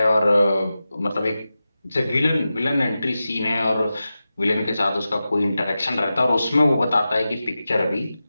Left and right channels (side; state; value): both; inverted; correlation -0.93